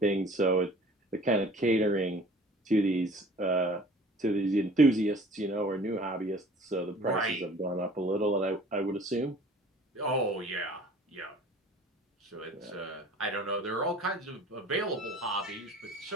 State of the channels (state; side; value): normal; both; correlation 0.48